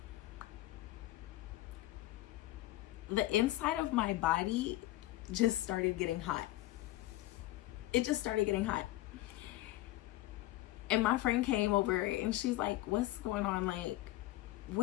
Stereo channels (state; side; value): quieter; right; 16.6 dB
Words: the inside of my body just started getting hot. It just started getting hot. And my friend came over and she's like, what's going on? Like,